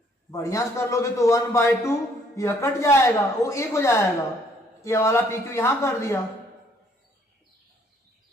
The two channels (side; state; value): both; normal; correlation 0.64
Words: बढ़िया से कर लोगे तो 1 बाई 2 यह कट जाएगा, वो 1 हो जाएगा। ये वाला पी क्यू यहां कर दिया,